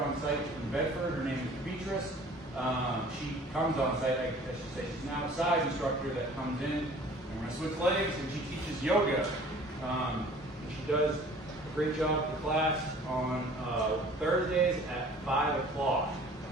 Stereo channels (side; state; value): both; normal; correlation 0.49